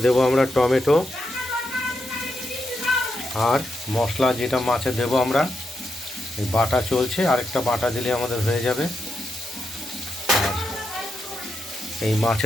দেবো আমরা টমেটো আর মশলা, যেটা মাছে দেবো আমরা এই বাটা চলছে, আরেকটা বাটা দিলে আমাদের হয়ে যাবে। আর এই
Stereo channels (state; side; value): normal; both; correlation 0.84